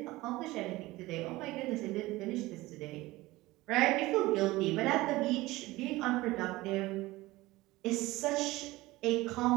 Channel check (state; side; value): quieter; left; 19.3 dB